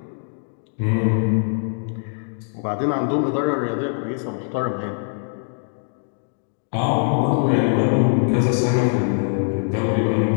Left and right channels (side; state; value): right; silent; 64 dB below the other